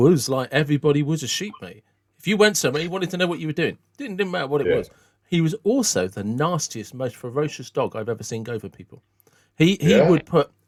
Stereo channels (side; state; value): both; identical; correlation 1.00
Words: like everybody was a sheep, mate. If you went somewhere, he wanted to know what you were doing. Didn't matter what it was. He was also the nastiest, most ferocious dog I've ever seen go for people. He would put